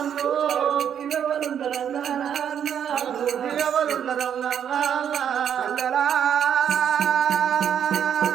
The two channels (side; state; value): left; quieter; 8.8 dB